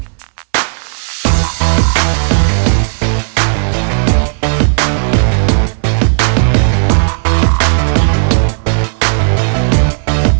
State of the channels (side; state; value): left; silent; digital silence